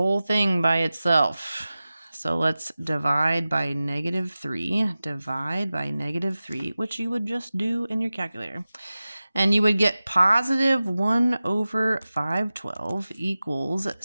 thing by itself. So let's divide by negative 3. Divide by negative 3, which you would just do in your calculator. And you would get positive 1 over 512 equals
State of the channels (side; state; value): both; inverted; correlation -0.95